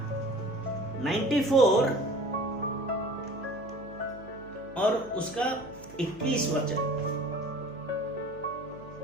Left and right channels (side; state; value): right; noise; hum, 20 dB below the sound